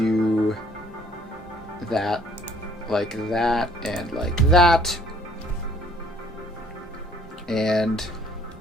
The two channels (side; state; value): both; normal; correlation 0.59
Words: that, like that, and like that. And